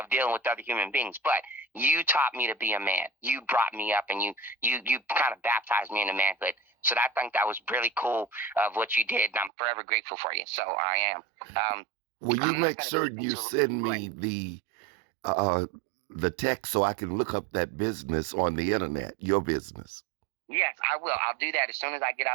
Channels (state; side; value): drops out; left; at 9.5 s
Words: dealing with other human beings. But you taught me to be a man. You brought me up, and you kind of baptized me into manhood. So I think that was really cool of what you did, and I'm forever grateful for you. So I am. Will you make certain you send me the text so I can look up that business on the internet, your business? Yes, I will. I'll do that as soon as I get